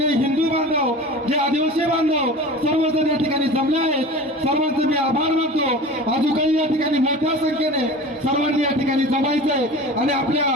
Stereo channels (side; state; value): both; normal; correlation 0.36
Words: हिंदू बांधव, जे आदिवासी बांधव सर्वजण या ठिकाणी जमले आहेत, सर्वांचे मी आभार मानतो। अजून काही या ठिकाणी मोठ्या संख्येने सर्वांनी या ठिकाणी जमायचंय आणि